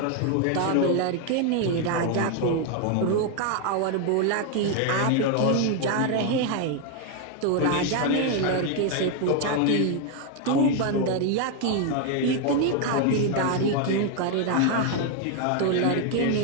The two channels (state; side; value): different; both; correlation 0.01